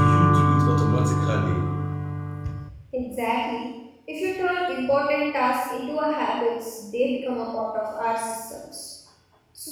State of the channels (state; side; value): identical; both; correlation 1.00